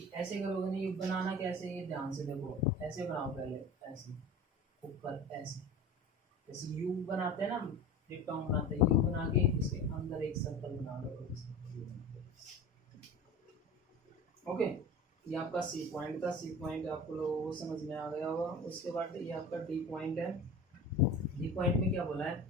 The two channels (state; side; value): normal; both; correlation 0.35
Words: ऐसे करोगे नहीं, ये बनाना कैसे, ये ध्यान से देखो, ऐसे बनाओ पहले, ऐसे ऊपर ऐसे, जैसे यू बनाते हैं ना, डिप्टोन बनाते हैं, यू बना के इसके अंदर एक सर्कल बना बना दो। ओके, ये आपका सी पॉइंट था। सी पॉइंट आपको लोगों को समझ में आ गया होगा। उसके बाद ये आपका डी पॉइंट है। डी पॉइंट में क्या बोला है,